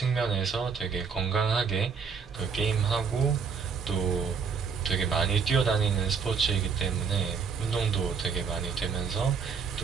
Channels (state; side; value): quieter; left; 5.9 dB